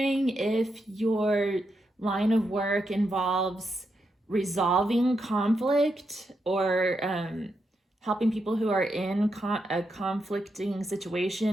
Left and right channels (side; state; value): both; normal; correlation 0.83